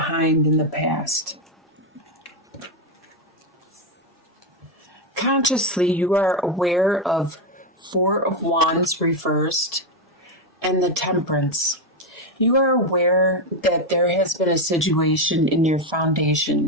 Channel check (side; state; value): both; normal; correlation 0.07